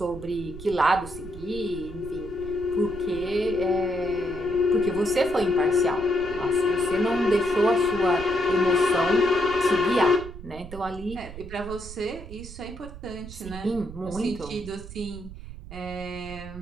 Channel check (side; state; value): right; noise; rumble, 13 dB below the sound